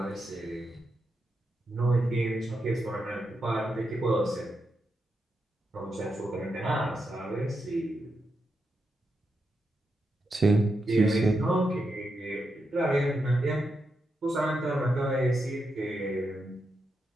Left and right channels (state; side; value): normal; both; correlation 0.85